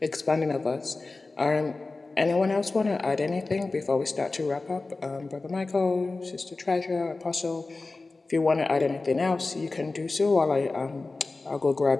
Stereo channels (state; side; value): quieter; right; 3.5 dB